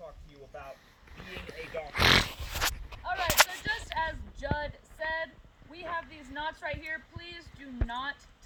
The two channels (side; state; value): both; identical; correlation 1.00